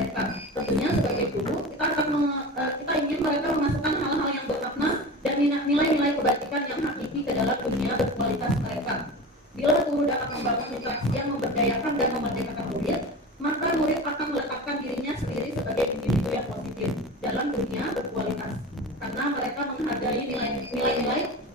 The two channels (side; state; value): both; normal; correlation 0.31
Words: Tentunya sebagai guru, kita ingin mereka memasukkan hal-hal yang bermakna dan nilai-nilai kebajikan yang hakiki ke dalam dunia berkualitas mereka. Bila guru dapat membangun interaksi yang memberdayakan dan memerdekakan murid, maka murid akan meletakkan dirinya sendiri sebagai individu yang positif dalam dunia berkualitas, karena mereka menghargai nilai-nilai